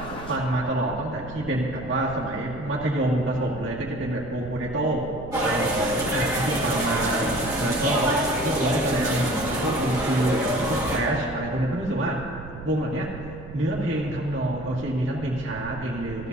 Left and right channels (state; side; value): noise; right; rumble, 13 dB below the sound